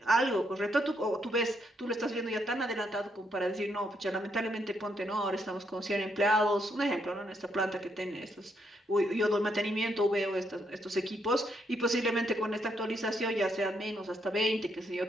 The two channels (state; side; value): normal; both; correlation 0.76